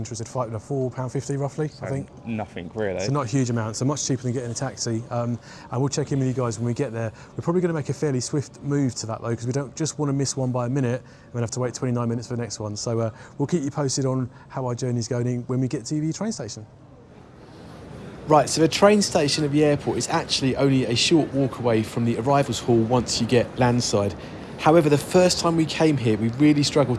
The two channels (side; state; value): both; identical; correlation 1.00